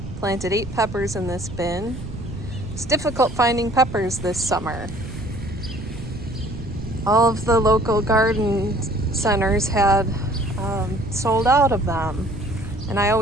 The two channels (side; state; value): right; noise; rumble, 11 dB below the sound